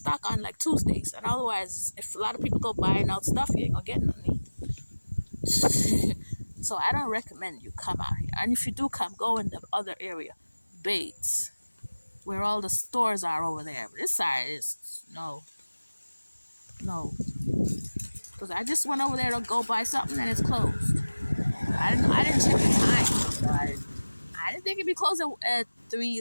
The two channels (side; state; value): both; inverted; correlation -1.00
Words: on like Tuesdays, and otherwise, if a lot of people go buying out stuff, you ain't gonna get nothing. So I don't recommend you come out here. And if you do come, go in the other area, Bates, where all the stores are over there. This side is no. Because I just went over there to go buy something and it's closed. I didn't check the time. So I didn't think it'd be closed at 3